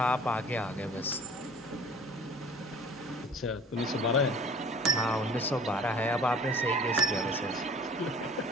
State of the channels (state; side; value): normal; both; correlation 0.48